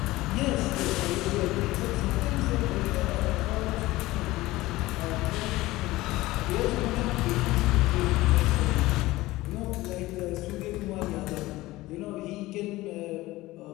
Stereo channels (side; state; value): right; quieter; 18.4 dB